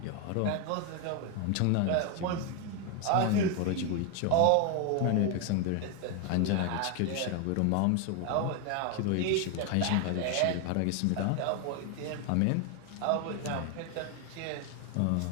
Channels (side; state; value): both; different; correlation 0.01